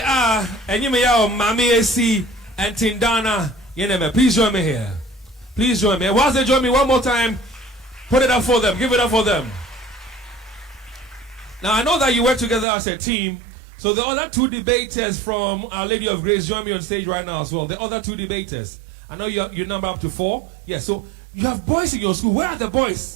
are, and you may have Mami AC and Tindana. Please join me here. Please join me. Whilst they join me one more time, put it up for them. Give it up for them. Now, I know that you work together as a team. So the other 2 debaters from Our Lady of Grace join me on stage right now as well. The other 2 debaters. I know you number up to 4. Yes, so you have boys in your school. Where are the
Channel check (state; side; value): drops out; left; at 12.7 s